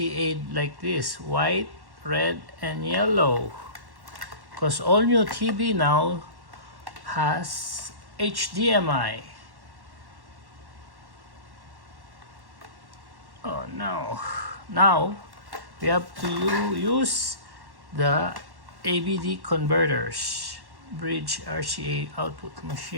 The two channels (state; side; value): late; left; 1.1 ms